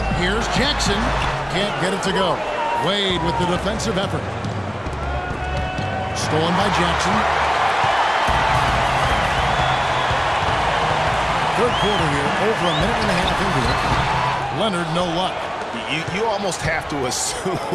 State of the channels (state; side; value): identical; both; correlation 1.00